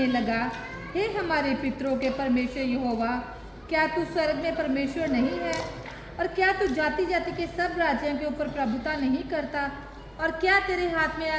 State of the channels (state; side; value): identical; both; correlation 1.00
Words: लगा हे हमारे पितरों के परमेश्वर यहोवा क्या तू स्वर्ग में परमेश्वर नहीं है और क्या तू जाति जाति के सब राज्यों के ऊपर प्रभुता नहीं करता और क्या तेरे हाथ में